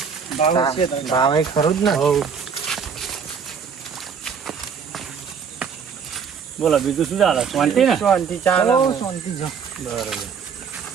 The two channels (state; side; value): quieter; left; 6.5 dB